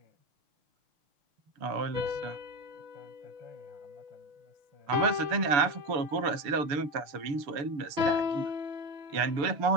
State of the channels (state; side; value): late; left; 6.9 ms